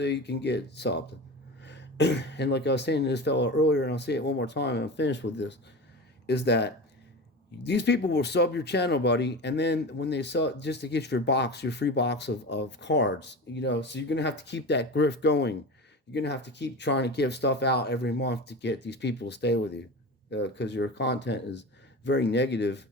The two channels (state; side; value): normal; both; correlation 0.28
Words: you can get subbed. And like I was saying to this fellow earlier, and I'll say it one more time and I'm finished with this, is that these people will sub your channel, buddy, and then when they sub, just to get your free box of cards, so you're going to have to keep that grift going. You're going to have to keep trying to give stuff out every month to get these people to stay with you. Because your content is very negative,